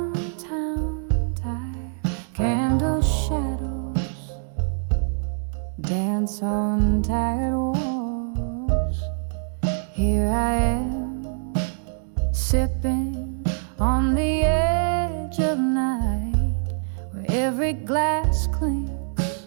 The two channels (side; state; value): left; silent; digital silence